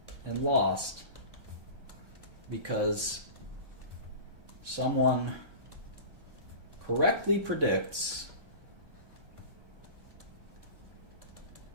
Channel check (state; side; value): late; left; 1.3 ms